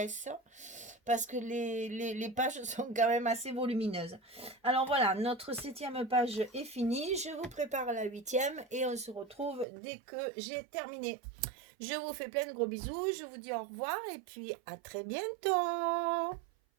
parce que les pages sont quand même assez volumineuses. Alors voilà, notre 7e page est finie. Je vous prépare la 8e et on se retrouve dès que j'ai terminé. Je vous fais plein de gros bisous. Je vous dis au revoir et puis à très bientôt.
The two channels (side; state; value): left; drops out; at 9.7 s